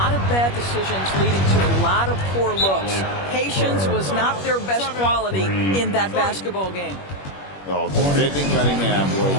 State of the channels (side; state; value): right; late; 21 ms